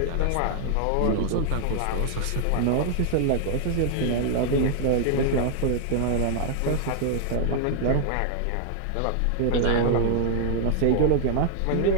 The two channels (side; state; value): both; different; correlation 0.00